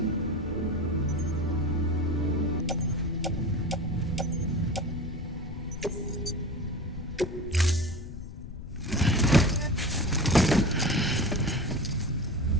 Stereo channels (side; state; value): left; noise; rumble, 11 dB below the sound